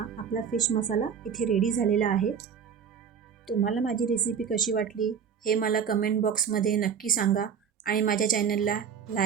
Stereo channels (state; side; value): quieter; left; 7.3 dB